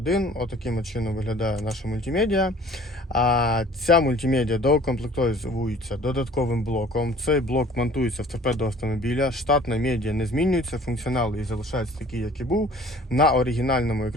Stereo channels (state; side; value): normal; both; correlation 0.50